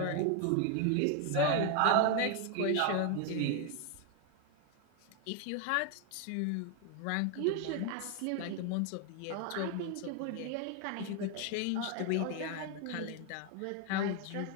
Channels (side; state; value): both; different; correlation 0.01